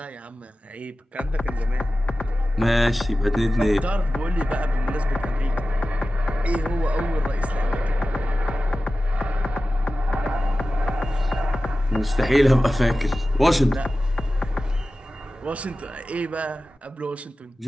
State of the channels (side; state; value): both; normal; correlation 0.95